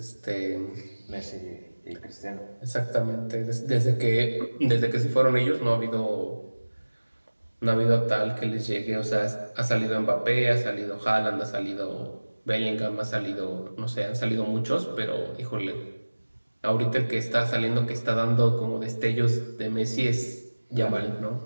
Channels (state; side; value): inverted; both; correlation -1.00